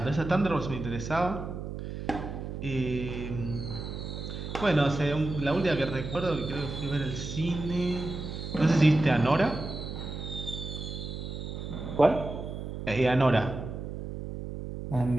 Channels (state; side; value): noise; right; hum, 7 dB below the sound